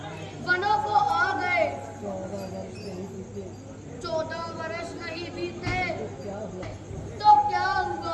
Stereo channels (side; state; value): both; identical; correlation 1.00